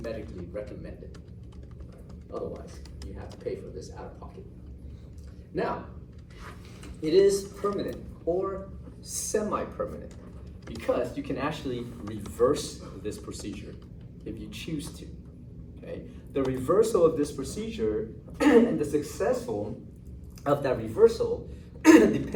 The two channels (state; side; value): identical; both; correlation 1.00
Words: recommended. Otherwise, you have to pay for this out of pocket. Now, it is permanent or semi-permanent because you can actually reverse this procedure if you choose to. Okay? The reversal of this procedure and the successful of that reversal